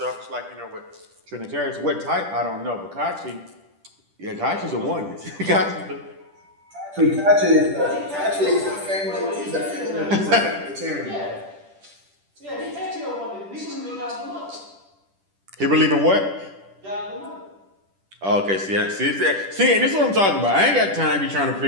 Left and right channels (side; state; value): left; late; 10 ms